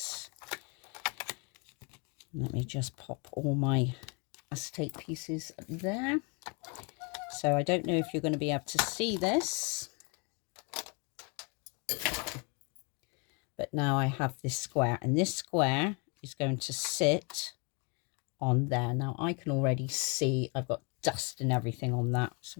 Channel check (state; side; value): quieter; right; 33.7 dB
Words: Let me just pop all my acetate pieces there. So I don't know if you're going to be able to see this, but now I have this square, and this square is going to sit on there. Now I can already see I've got dust and everything on that,